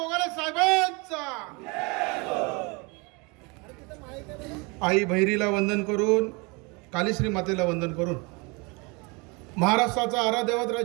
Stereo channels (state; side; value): quieter; left; 28.9 dB